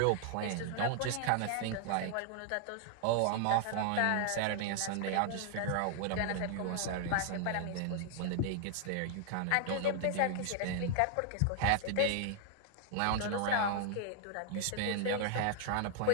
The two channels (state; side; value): different; both; correlation 0.00